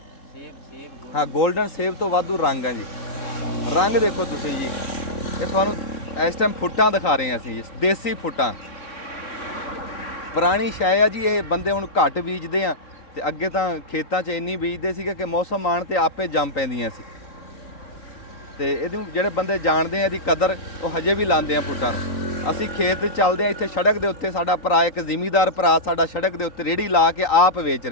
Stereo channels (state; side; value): late; right; 3.9 ms